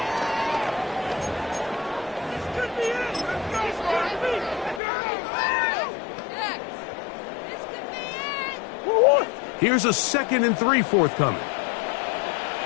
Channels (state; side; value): drops out; right; at 4.8 s